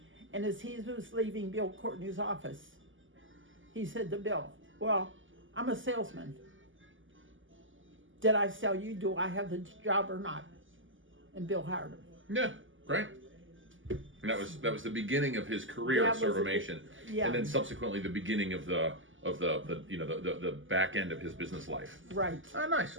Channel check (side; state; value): left; late; 0.57 ms